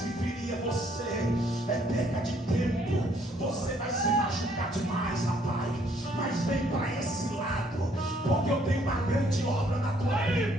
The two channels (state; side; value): normal; both; correlation 0.65